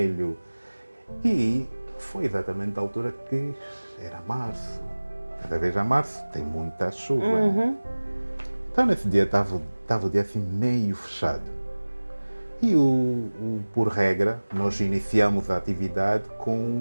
E foi exatamente a altura que era março. Cada vez a março tem muita chuva. Né? Então nesse dia estava o dia assim meio fechado. E por regra, nós iniciamos a atividade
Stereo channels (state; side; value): inverted; both; correlation -1.00